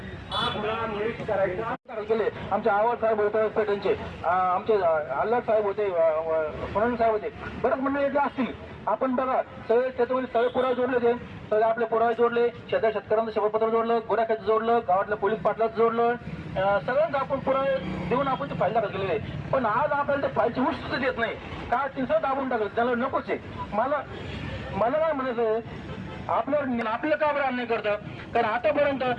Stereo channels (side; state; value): both; identical; correlation 1.00